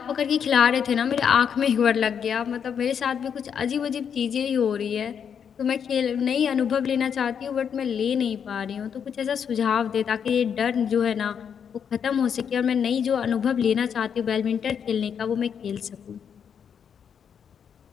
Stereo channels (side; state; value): right; quieter; 7.6 dB